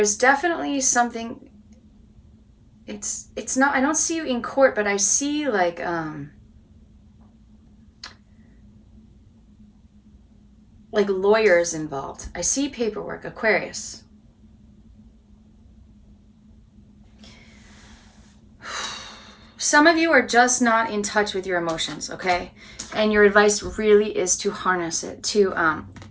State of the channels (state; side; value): identical; both; correlation 1.00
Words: definitely something. It's not, I don't see you in court, but I see like lawyers involved. I see paperwork, Aquarius. Some of you are just not in touch with your emotions, okay? And your advice really is to harness it, to